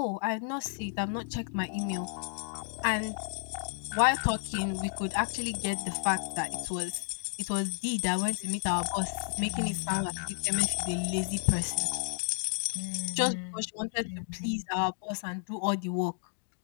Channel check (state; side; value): silent; right; digital silence